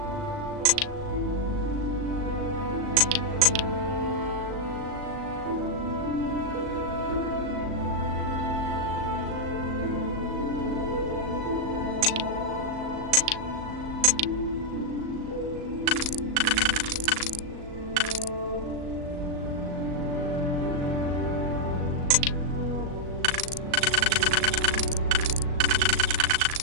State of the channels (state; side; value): late; left; 37 ms